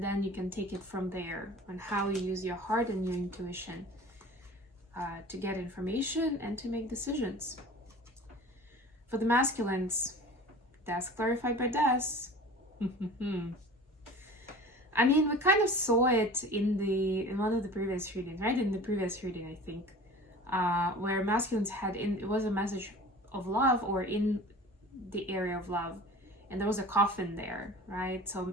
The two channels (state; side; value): normal; both; correlation 0.40